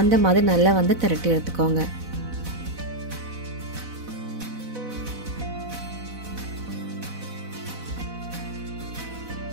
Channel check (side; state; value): left; late; 4.0 ms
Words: அந்த மாதிரி நல்லா வந்து திரட்டி எடுத்துக்கோங்க.